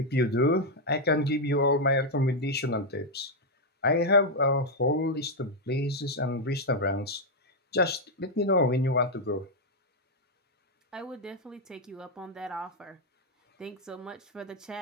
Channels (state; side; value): normal; both; correlation 0.00